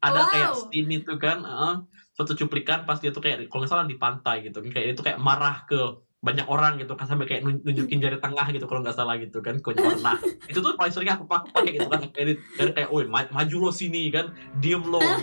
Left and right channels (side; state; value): both; inverted; correlation -1.00